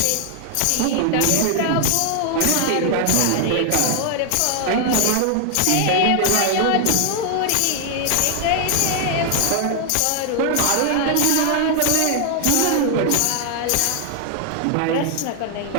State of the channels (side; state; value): both; different; correlation 0.00